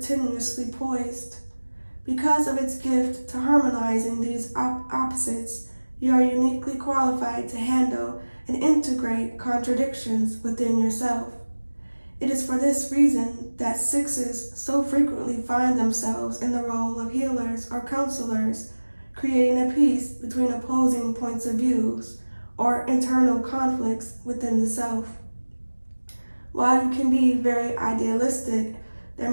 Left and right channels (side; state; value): both; inverted; correlation -1.00